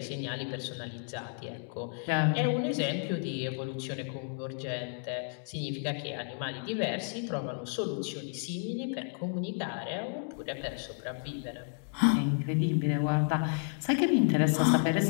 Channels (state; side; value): silent; right; 57 dB below the other